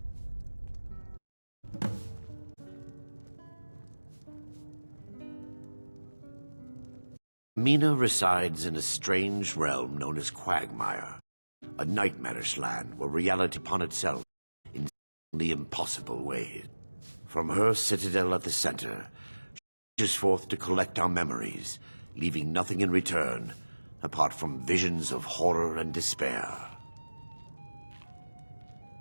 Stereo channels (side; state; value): both; inverted; correlation -1.00